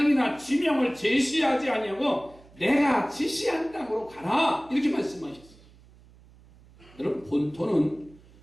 지명을 제시하지 아니하고 내가 지시한 땅으로 가라, 이렇게 말씀하셨어요. 여러분, 본토는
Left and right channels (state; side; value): noise; right; hum, 25 dB below the sound